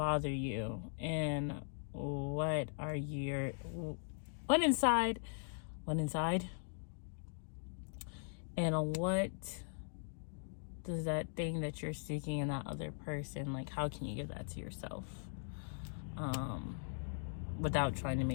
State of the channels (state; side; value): silent; right; digital silence